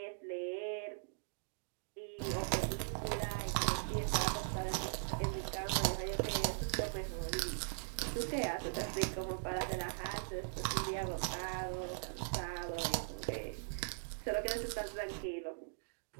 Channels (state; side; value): silent; left; digital silence